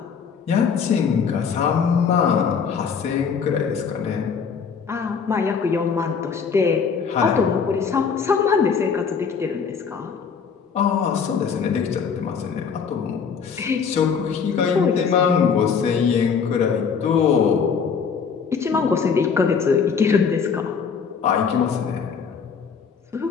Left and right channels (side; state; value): right; quieter; 6.2 dB